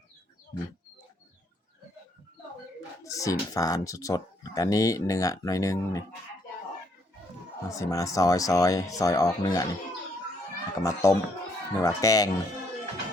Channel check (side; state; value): both; normal; correlation 0.70